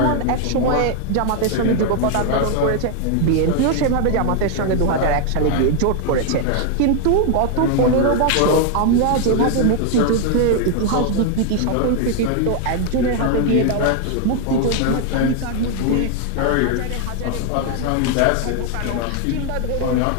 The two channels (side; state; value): both; different; correlation 0.00